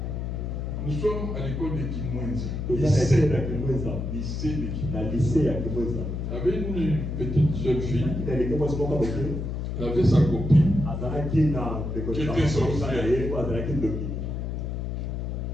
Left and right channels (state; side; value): noise; left; hum, 3 dB below the sound